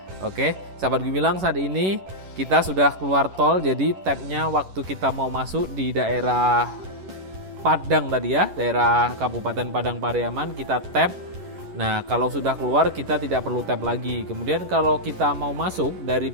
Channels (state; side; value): late; left; 11 ms